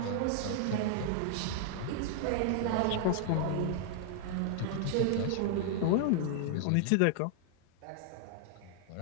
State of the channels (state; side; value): different; both; correlation -0.01